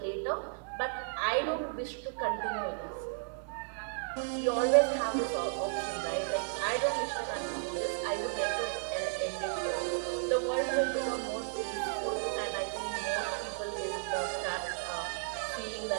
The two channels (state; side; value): silent; left; digital silence